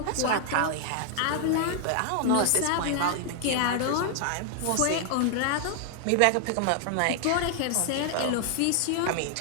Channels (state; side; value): different; both; correlation 0.00